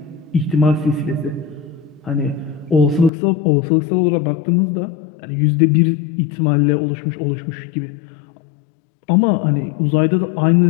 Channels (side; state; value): right; drops out; at 3.1 s